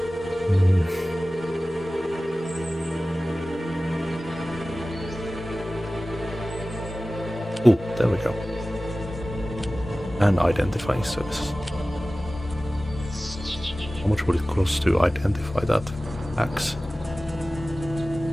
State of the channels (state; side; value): normal; both; correlation 0.97